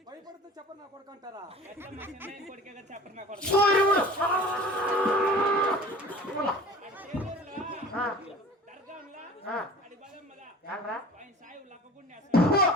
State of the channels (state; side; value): normal; both; correlation 0.43